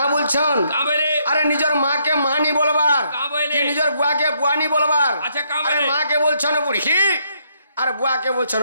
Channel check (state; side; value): inverted; both; correlation -0.73